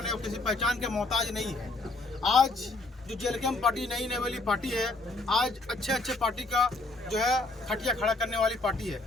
है वो किसी पहचान के मोहताज नहीं है। आज जो जेलकेम पार्टी नई वाली पार्टी है, आज अच्छे पार्टी का जो है खटिया खड़ा करने वाली पार्टी है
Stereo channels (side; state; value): right; quieter; 3.1 dB